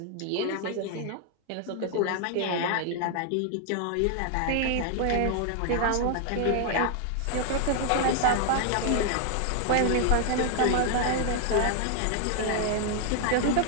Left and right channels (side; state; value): both; different; correlation 0.00